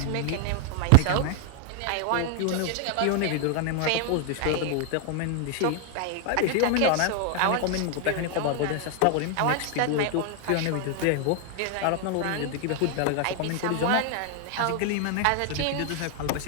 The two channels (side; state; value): both; different; correlation 0.00